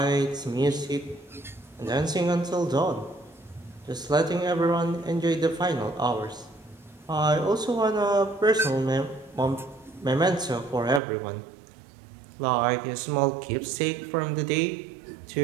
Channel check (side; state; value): left; drops out; at 11.0 s